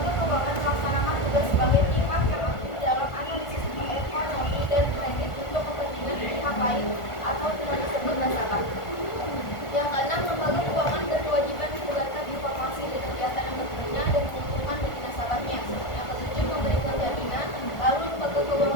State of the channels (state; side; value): late; right; 1.5 ms